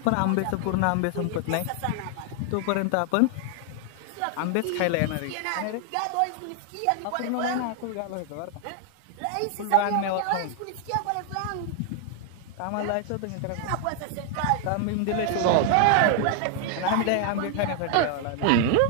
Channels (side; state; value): both; different; correlation 0.00